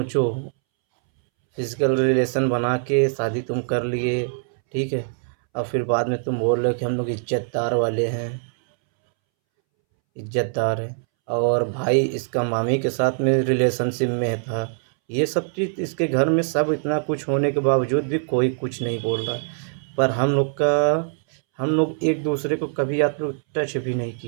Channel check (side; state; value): left; silent; 63 dB below the other